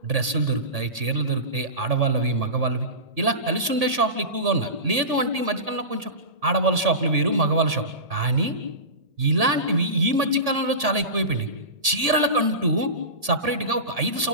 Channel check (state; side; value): late; left; 1.8 ms